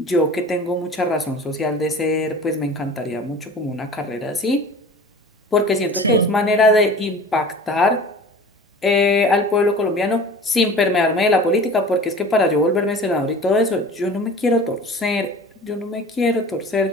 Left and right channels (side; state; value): both; normal; correlation 0.40